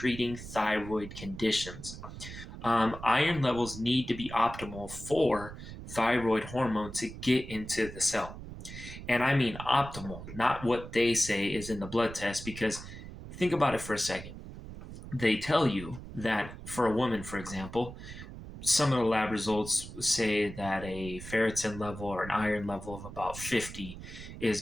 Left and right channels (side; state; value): right; noise; rumble, 12 dB below the sound